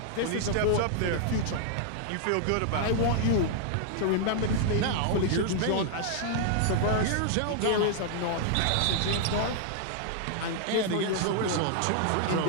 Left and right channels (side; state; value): both; different; correlation -0.01